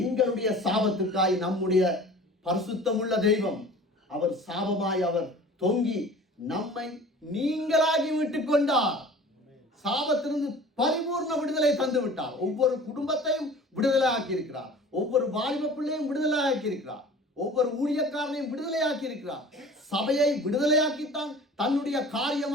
எங்களுடைய சாபத்துக்காய் நம்முடைய பரிசுத்தமுள்ள தெய்வம் அவர் சாபமாய் அவர் தொங்கி நம்மை நீங்களாகி விட்டுக் கொண்டார். சாபத்திலிருந்து பரிபூர்ண விடுதலை தந்து விட்டார். ஒவ்வொரு குடும்பத்தையும் விடுதலை ஆக்கி இருக்கிறார். ஒவ்வொரு வாலிப பிள்ளையும் விடுதலை ஆக்கி இருக்கிறார். ஒவ்வொரு ஊழியக்காரனையும் விடுதலை ஆக்கி இருக்கிறார். சபையை விடுதலையாக்கித்தான் தன்னுடைய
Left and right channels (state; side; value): normal; both; correlation 0.43